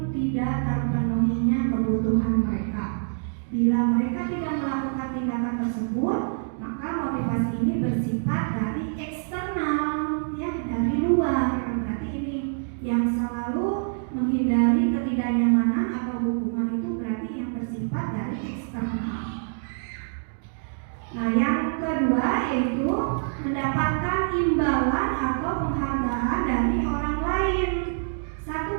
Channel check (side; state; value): left; silent; digital silence